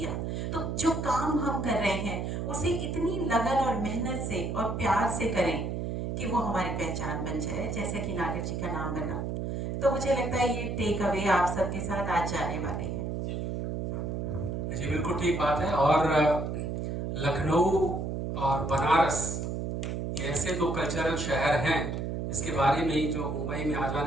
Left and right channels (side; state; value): right; noise; hum, 2 dB below the sound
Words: तो जो काम हम कर रहे हैं उसे इतनी लगन और मेहनत से और प्यार से करें कि वो हमारी पहचान बन जाए, जैसे कि नागर जी का नाम बना। तो मुझे लगता है ये टेक अवे आप सबके साथ आज जाने वाले हैं। जी बिल्कुल ठीक बात है। और लखनऊ और बनारस ये ऐसे दो कल्चरल शहर हैं जिसके बारे में ही जो मुंबई में आ